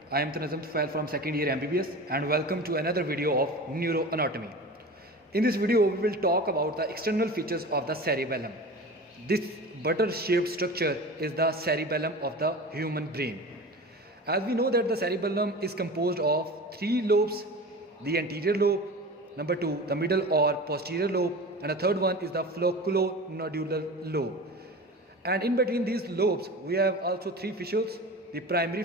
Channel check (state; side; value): normal; both; correlation 0.33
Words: I am Tufail from second year MBBS and welcome to another video of Neuroanatomy. In this video we will talk about the external features of the cerebellum. This butter-shaped structure is the cerebellum of the human brain. As we know that the cerebellum is composed of three lobes: the anterior lobe, number two the middle or posterior lobe, and the third one is the flocculonodular lobe. And in between these lobes we have also three fissures: the primary